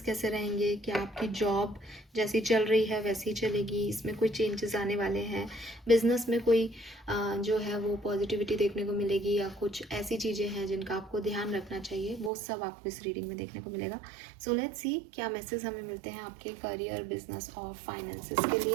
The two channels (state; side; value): drops out; left; at 12.3 s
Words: कैसे रहेंगे, क्या आपकी जॉब जैसी चल रही है वैसी चलेगी, इसमें कोई चेंजेस आने वाले हैं, बिजनेस में कोई जो है वो पॉजिटिविटी देखने को मिलेगी, या कुछ ऐसी चीज़ें हैं जिनका आपको ध्यान रखना चाहिए, वो सब आपको इस रीडिंग में देखने को मिलेगा। सो लेट्स सी क्या मैसेज हमें मिलते हैं आपके करियर, बिजनेस और फाइनेंसेस के